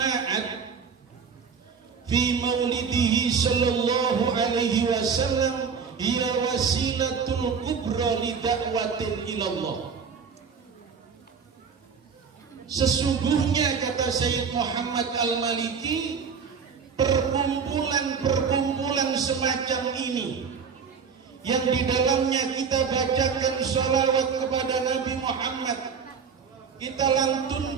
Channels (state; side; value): quieter; left; 6.1 dB